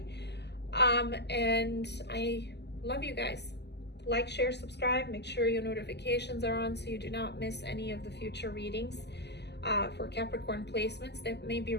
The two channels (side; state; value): right; late; 0.50 ms